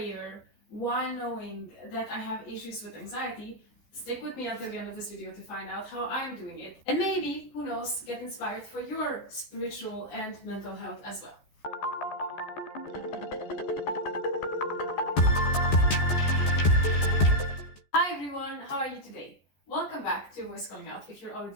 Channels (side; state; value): right; late; 14 ms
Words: while knowing that I have issues with anxiety, stick with me until the end of this video to find out how I'm doing it. And maybe, who knows, get inspired for your spiritual and mental health as well. Hi everyone, how are you today? Welcome back to Voice Calling Out if you're